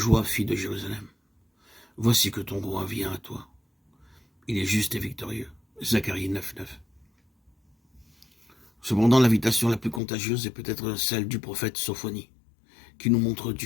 fille de Jérusalem. Voici que ton roi vient à toi. Il est juste et victorieux. Zacharie 9, 9. Cependant, l'invitation la plus contagieuse est peut-être celle du prophète Sophonie, qui nous montre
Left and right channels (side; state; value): right; drops out; at 10.0 s